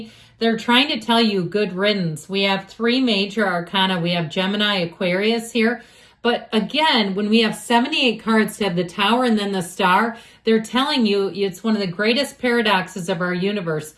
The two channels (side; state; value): both; identical; correlation 1.00